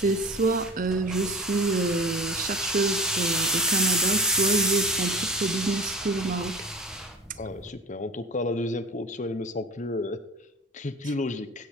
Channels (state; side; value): normal; both; correlation 0.37